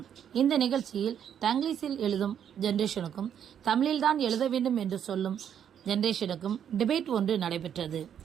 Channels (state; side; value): quieter; left; 9.0 dB